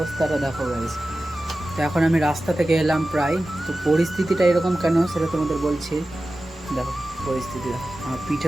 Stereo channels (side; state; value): both; normal; correlation 0.94